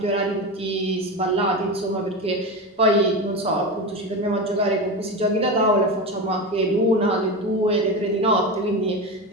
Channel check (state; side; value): normal; both; correlation 0.21